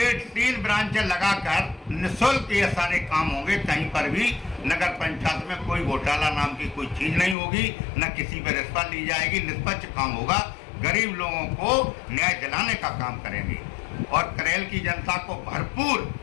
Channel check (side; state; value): right; drops out; at 7.4 s